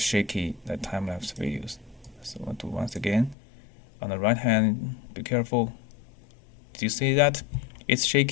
time-lapse videos. So I'll do once again. On the right hand, be careful. Do you see that? It's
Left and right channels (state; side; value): drops out; right; at 3.4 s